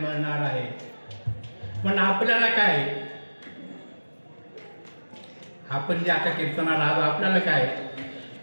आहे. पण आपल्याला काय, आपण जे आता कीर्तनाला आलो आपल्याला काय,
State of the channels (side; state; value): both; inverted; correlation -1.00